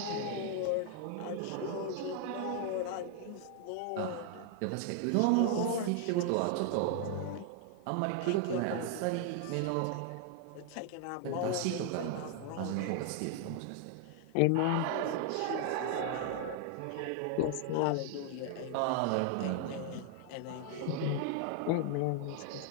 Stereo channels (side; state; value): both; different; correlation 0.00